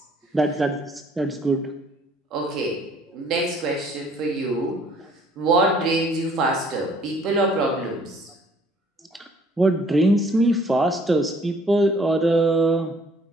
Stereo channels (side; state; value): both; normal; correlation 0.59